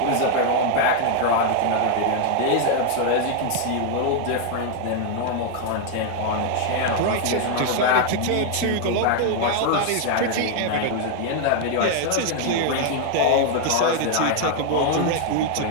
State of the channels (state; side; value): different; both; correlation 0.00